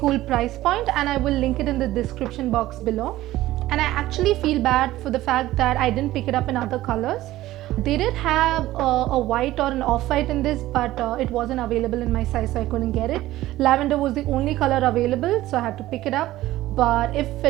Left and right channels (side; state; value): left; quieter; 15.8 dB